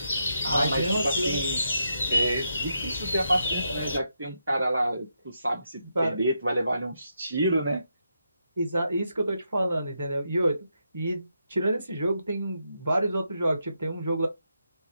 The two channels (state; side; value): inverted; both; correlation -0.82